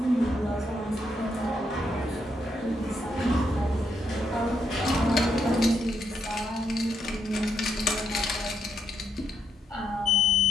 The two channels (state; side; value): normal; both; correlation 0.77